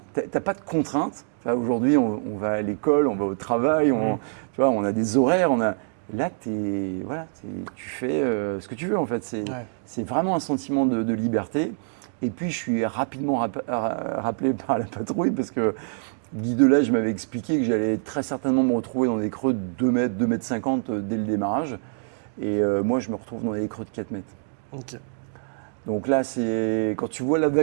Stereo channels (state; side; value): silent; left; digital silence